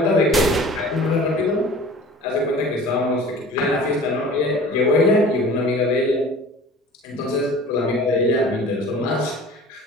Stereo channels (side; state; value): both; normal; correlation 0.42